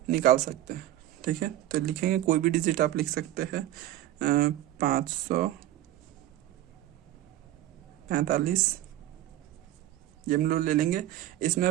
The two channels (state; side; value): quieter; left; 13.8 dB